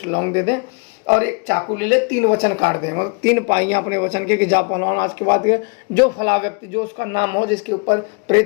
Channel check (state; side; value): quieter; right; 35.5 dB